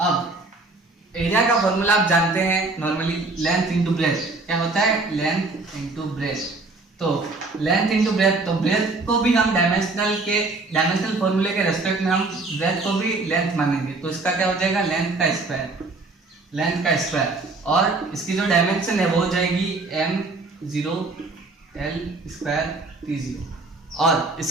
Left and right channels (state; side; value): quieter; left; 3.4 dB